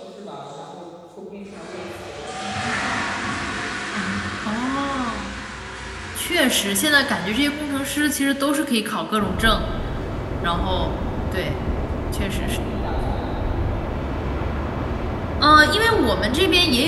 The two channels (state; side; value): identical; both; correlation 1.00